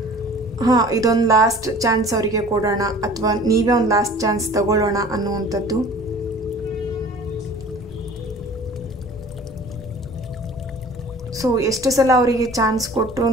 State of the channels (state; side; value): normal; both; correlation 0.46